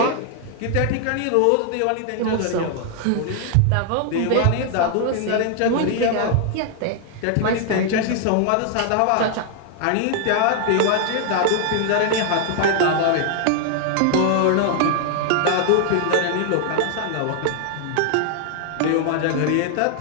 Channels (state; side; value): different; both; correlation 0.00